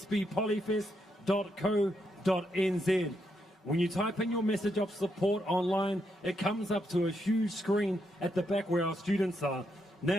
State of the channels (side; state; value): both; normal; correlation 0.80